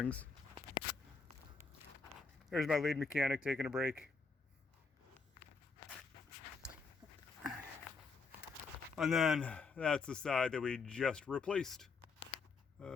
There's my lead mechanic taking a break. And then that's the side that we just replaced.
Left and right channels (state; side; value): quieter; right; 4.6 dB